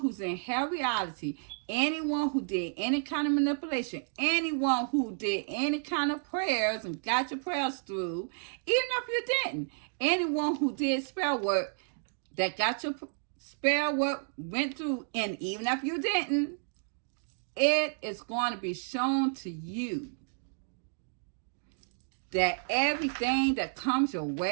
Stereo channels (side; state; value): left; silent; digital silence